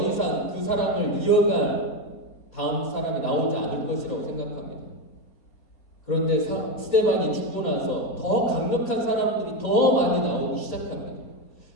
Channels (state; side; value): late; right; 4.3 ms